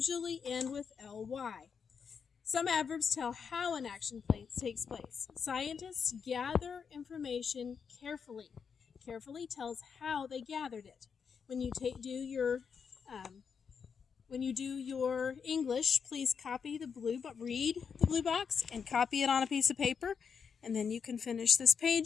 end with ly. Some adverbs tell how an action takes place. Scientists gather information carefully. Carefully tells how they gathered it. When you do your English, please read the blue box and copy it on a piece of paper, and then you can finish this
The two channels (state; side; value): quieter; right; 6.4 dB